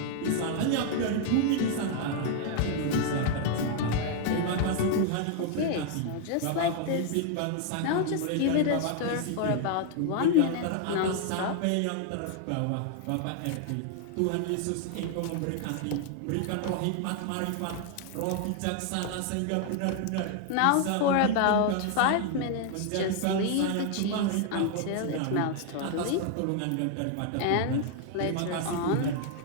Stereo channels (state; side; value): different; both; correlation 0.00